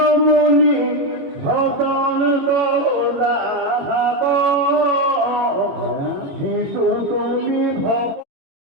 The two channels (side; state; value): left; late; 22 ms